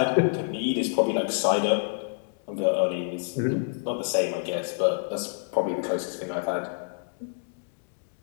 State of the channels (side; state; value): right; silent; digital silence